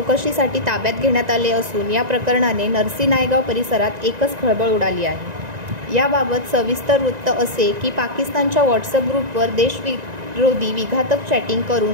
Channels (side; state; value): left; late; 1.9 ms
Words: ताब्यात घेण्यात आले असून या प्रकरणाने नरसी नायगाव परिसरात एकच खळबळ उडाली आहे. याबाबत सविस्तर वृत्त असे की पाकिस्तानच्या व्हॉट्सअप ग्रुपवर देशविरोधी विघातक चॅटिंग